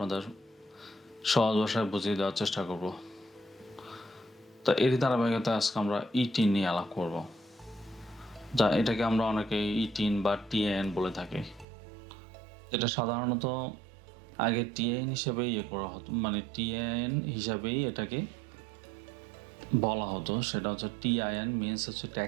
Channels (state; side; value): drops out; left; at 11.7 s